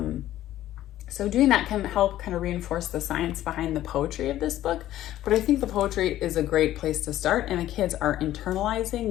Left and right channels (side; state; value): right; quieter; 13.5 dB